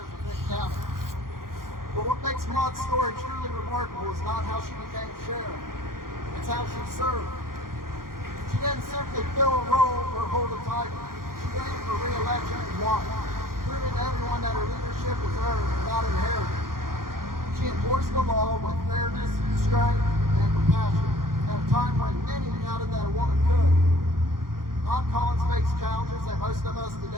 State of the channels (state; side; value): late; left; 0.92 ms